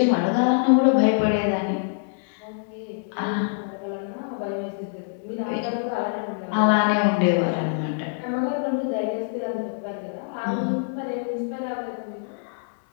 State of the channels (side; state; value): right; silent; digital silence